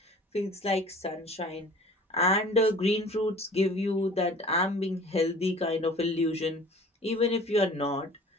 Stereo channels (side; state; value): both; normal; correlation 0.46